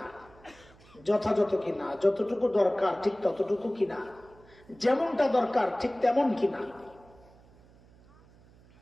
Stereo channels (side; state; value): right; noise; hum, 26 dB below the sound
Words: যথাযথ কিনা, যতটুকু দরকার ঠিক ততটুকু কিনা, যেমনটা দরকার ঠিক তেমন কিনা,